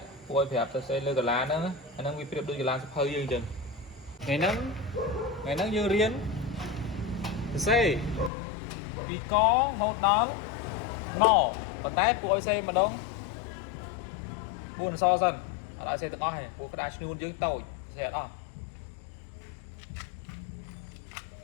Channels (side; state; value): right; drops out; at 8.3 s